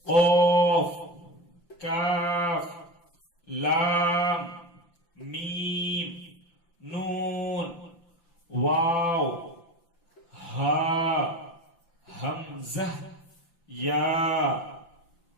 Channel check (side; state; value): right; late; 5.9 ms